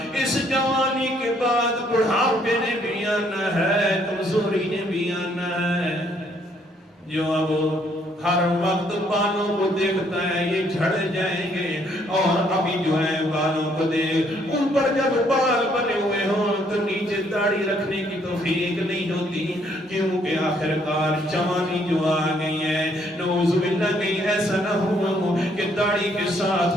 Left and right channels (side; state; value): both; normal; correlation 0.67